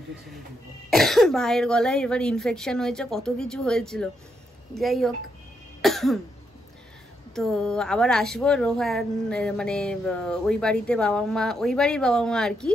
ভাইয়ের গলায় এবার ইনফেকশন হয়েছে, কত কিছু হয়েছিল। যাই হোক, তো আবার আসবো। রোহান মানে ওই বাড়ির বাবা মা আর কি,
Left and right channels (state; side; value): normal; both; correlation 0.79